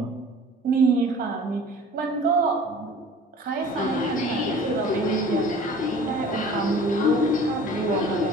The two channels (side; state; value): both; normal; correlation 0.45